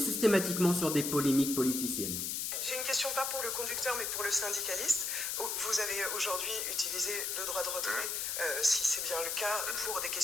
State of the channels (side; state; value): left; noise; hiss, 1 dB below the sound